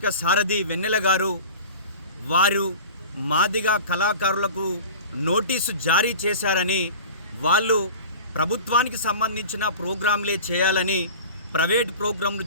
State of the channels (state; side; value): inverted; both; correlation -0.37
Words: సారథి వెన్నెల గారు వారు మాదిగ కళాకారులకు నోటీసు జారీ చేశారని, వాళ్ళు ప్రభుత్వానికి సంబంధించిన ప్రోగ్రాంలే చేయాలని, ప్రైవేట్ ప్రోగ్రాంలు